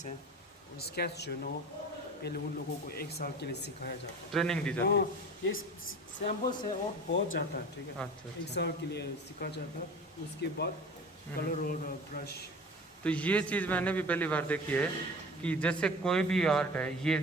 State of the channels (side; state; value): both; normal; correlation 0.38